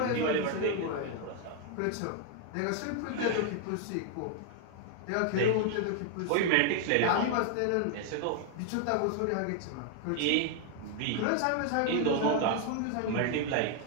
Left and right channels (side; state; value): both; different; correlation 0.00